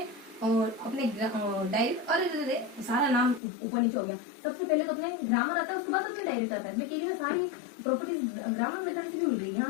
और अपने डायरेक्ट, अरे सारा नाम ऊपर नीचे हो गया। सबसे पहले तो अपने ग्रामर आता है, उसके बाद अपने डायरेक्ट आता है। मैं कह रही हूँ सारी प्रॉपर्टीज ग्रामर मेथड से भी मिल गई। यहाँ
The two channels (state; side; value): drops out; right; at 3.4 s